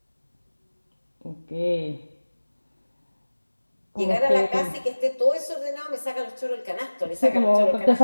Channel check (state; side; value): inverted; both; correlation -1.00